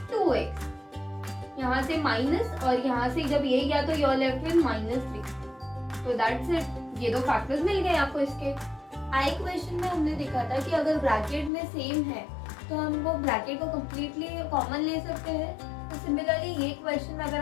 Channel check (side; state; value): right; drops out; at 11.5 s